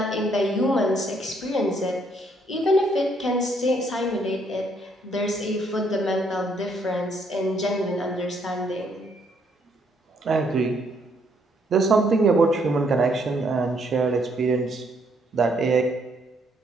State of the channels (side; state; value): both; normal; correlation 0.70